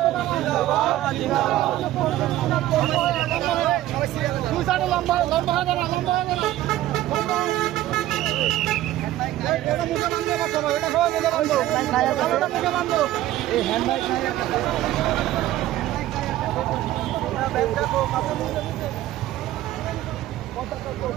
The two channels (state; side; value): quieter; left; 14.4 dB